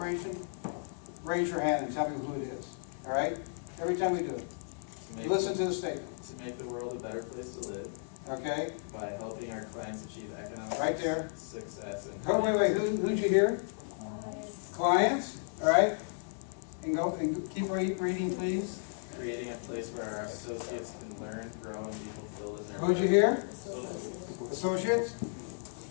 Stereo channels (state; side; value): silent; right; 55 dB below the other